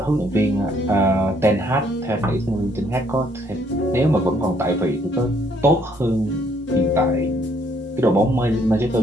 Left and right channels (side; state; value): both; normal; correlation 0.67